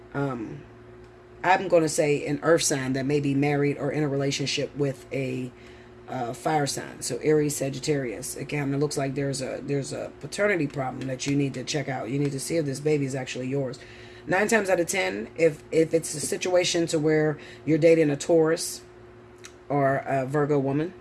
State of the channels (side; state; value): both; identical; correlation 1.00